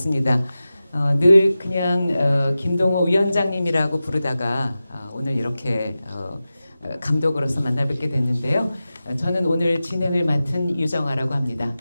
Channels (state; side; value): inverted; both; correlation -0.94